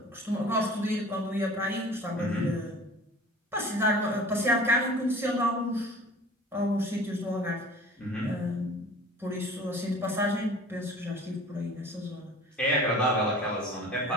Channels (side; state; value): both; normal; correlation 0.43